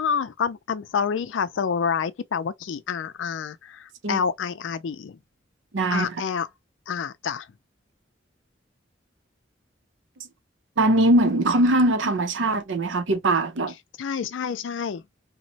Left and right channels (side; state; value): both; normal; correlation 0.16